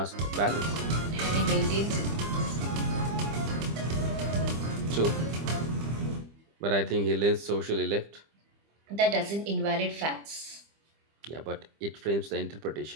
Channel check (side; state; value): left; late; 25 ms